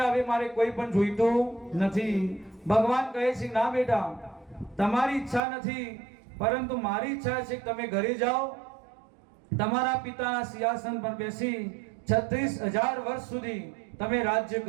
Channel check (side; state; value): left; drops out; at 5.4 s